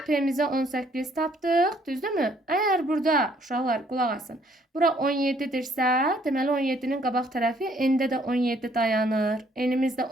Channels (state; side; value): normal; both; correlation 0.65